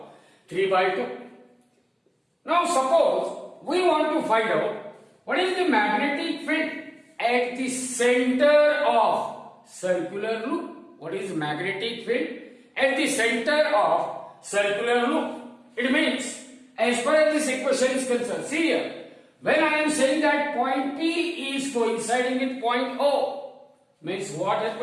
3 by 2. Now suppose we want to find out what is the magnetic field at the center of circular loop. What is magnetic field at the center of circular loop? It means, as far as this equation is concerned, see here, when I am saying that point P is coinciding with point O, means what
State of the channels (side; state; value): both; identical; correlation 1.00